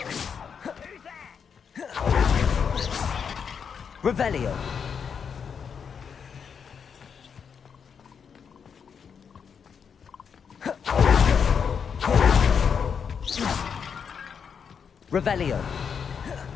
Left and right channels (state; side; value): quieter; right; 6.8 dB